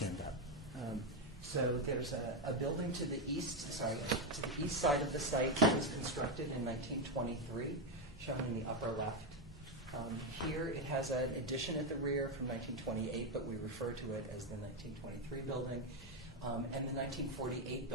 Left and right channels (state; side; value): normal; both; correlation 0.07